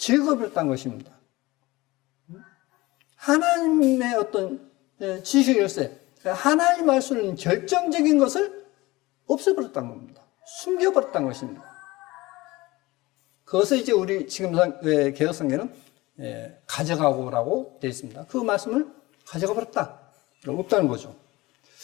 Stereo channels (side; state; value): right; quieter; 20.4 dB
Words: 것입니다. 하나님의 어떤 지식의 열쇠, 하나님 말씀은 결정적인 것을 없애버렸다는 겁니다. 숨겨버렸다는 것입니다. 그것을 이제 우리 지금 개혁성경은 가져가고라고 되어 있습니다. 그 말씀을 가져가 버렸다. 없다는 거죠.